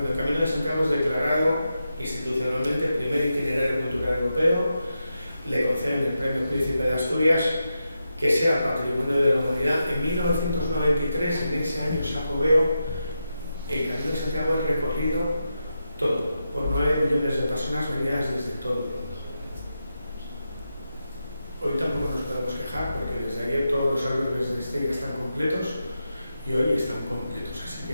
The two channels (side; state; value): both; inverted; correlation -0.88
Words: el Camino de Santiago es declarado institucionalmente primer itinerario cultural europeo, le conceden el premio Príncipe de Asturias, que sea Patrimonio de la Humanidad. En 1993, en ese año sacobeo, el Camino de Santiago es recorrido todo, por 9 millones de personas venidas desde todo el mundo. Hoy tampoco nos podemos quejar, porque desde ayer todos los albergues de Estella están completos y hoy están completos, así